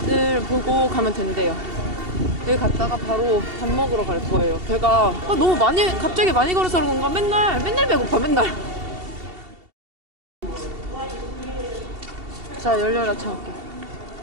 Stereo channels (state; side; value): late; left; 2.7 ms